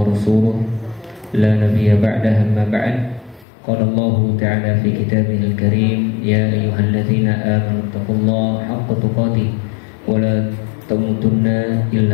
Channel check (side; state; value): right; drops out; at 3.5 s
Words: لا نبي بعده. أما بعد، قال الله تعالى في كتابه الكريم: يا أيها الذين آمنوا اتقوا الله حق تقاته ولا تموتن